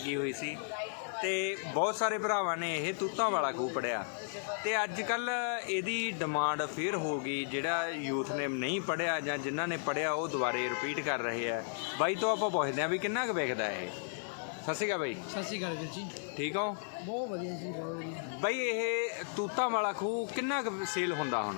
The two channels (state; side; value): silent; right; digital silence